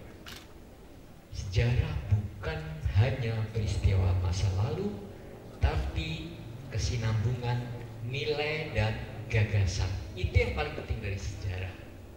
sejarah bukan hanya peristiwa masa lalu, tapi kesinambungan nilai dan gagasan. Itu yang paling penting dari sejarah,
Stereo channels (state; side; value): identical; both; correlation 1.00